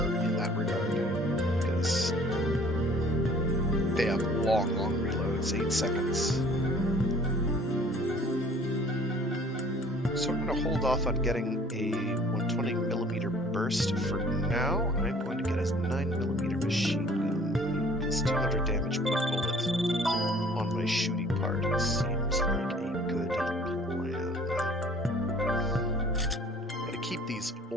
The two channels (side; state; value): both; normal; correlation 0.53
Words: in that regard, because they have long reloads, 8 seconds. So I'm going to hold off on getting a 120mm burst for now. I'm going to get a 9mm machine gun. It's 200 damage per bullet on my shooting part. It seems like a good plan. I'm going to keep these